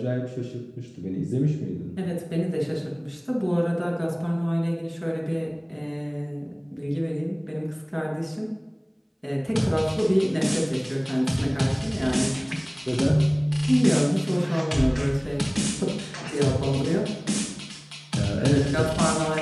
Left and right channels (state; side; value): identical; both; correlation 1.00